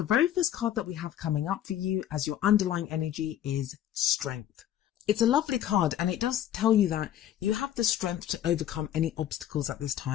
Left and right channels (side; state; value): right; quieter; 11.4 dB